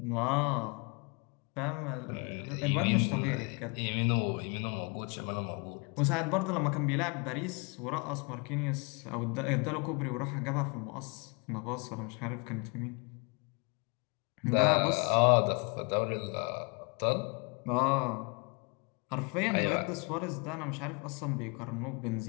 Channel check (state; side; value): quieter; right; 32.7 dB